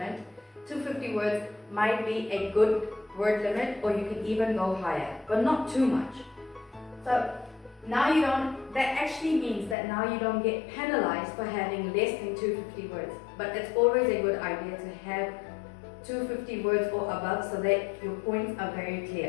250 words might be a good word limit, or you can even go higher, but not too much. So now that actually means that now you don't get penalized for having less than 250 words. But it's always a good idea to have 250 words or above so that your points are very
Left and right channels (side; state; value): right; drops out; at 9.8 s